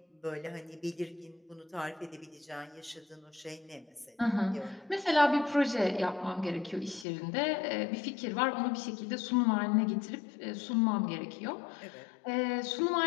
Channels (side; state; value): right; drops out; at 7.1 s